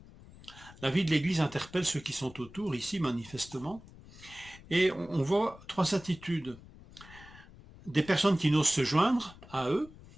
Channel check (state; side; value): noise; left; rumble, 20 dB below the sound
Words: La vie de l'Église interpelle ceux qui sont autour, ici manifestement, et on voit trois attitudes. Des personnes qui n'osent se joindre à eux,